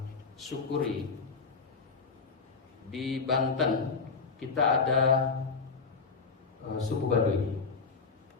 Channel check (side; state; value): right; quieter; 4.8 dB